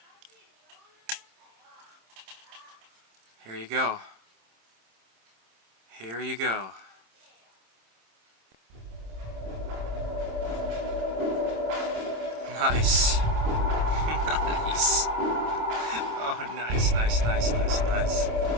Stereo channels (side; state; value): left; late; 26 ms